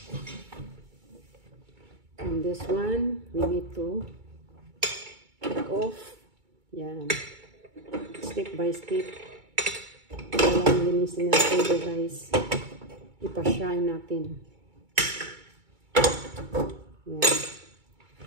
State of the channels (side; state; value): left; late; 2.2 ms